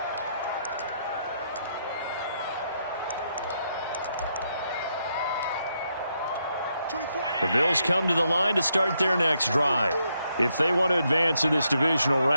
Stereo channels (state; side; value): inverted; both; correlation -0.78